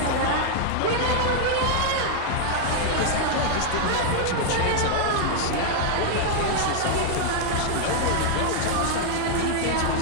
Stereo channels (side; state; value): both; different; correlation 0.00